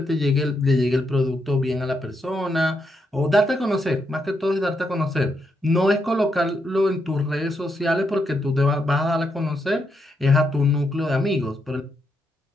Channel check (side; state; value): both; normal; correlation 0.81